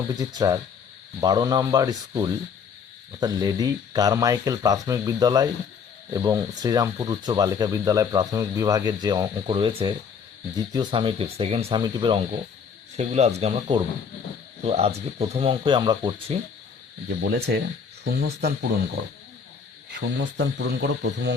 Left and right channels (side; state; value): right; quieter; 6.3 dB